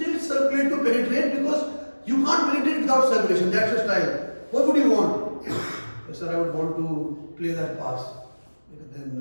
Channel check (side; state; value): both; inverted; correlation -1.00